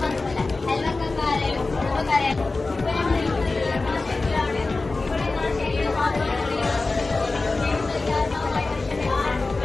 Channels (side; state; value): right; quieter; 3.5 dB